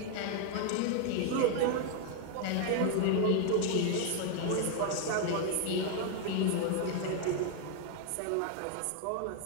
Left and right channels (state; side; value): different; both; correlation 0.00